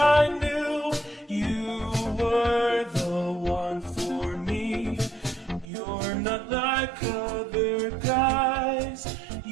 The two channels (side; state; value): left; drops out; at 5.7 s